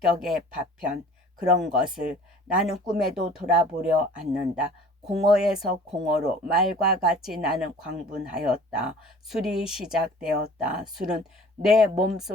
파편, 그런 것을 나는 꿈에도 돌아보려 않는다. 공허에서 공허로 말과 같이 나는 광분하였다. 술이 시작되었다. 술은 내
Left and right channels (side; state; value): both; normal; correlation 0.47